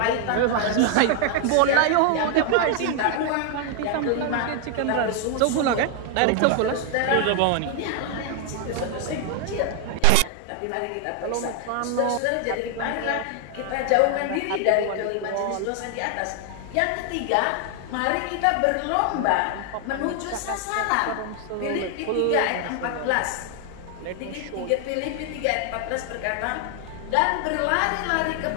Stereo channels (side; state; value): both; different; correlation 0.00